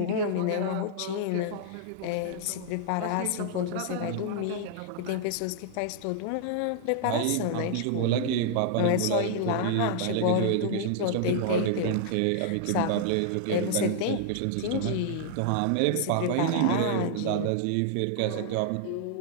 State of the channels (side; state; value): both; different; correlation -0.01